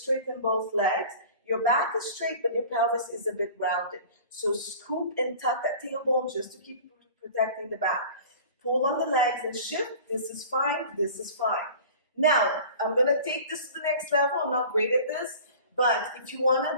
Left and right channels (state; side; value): inverted; both; correlation -0.42